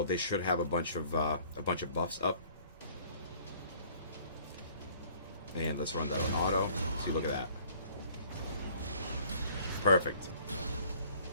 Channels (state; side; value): inverted; both; correlation -0.55